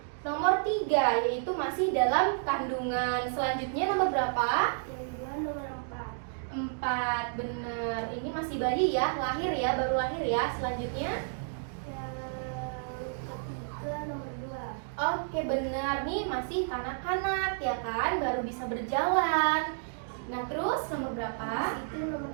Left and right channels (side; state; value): left; silent; digital silence